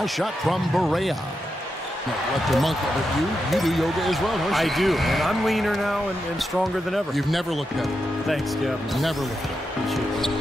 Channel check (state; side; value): normal; both; correlation 0.87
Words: shot from Berea. Let the monkey, but you do yoga as well, don't you? I do, and I'm leaner now and stronger than ever. You've never looked better. Thanks, Kevin. Never looked